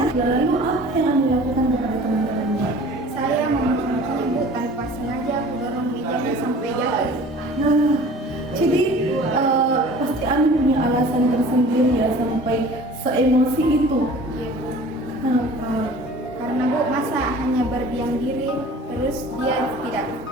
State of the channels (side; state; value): both; normal; correlation 0.45